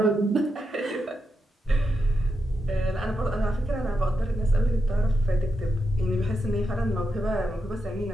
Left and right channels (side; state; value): both; normal; correlation 0.86